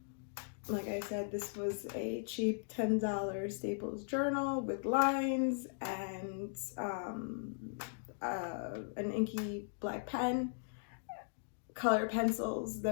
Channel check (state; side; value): silent; right; digital silence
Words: Like I said, this was a cheap $10 Staples journal with lines and an inky black pen, color pencils.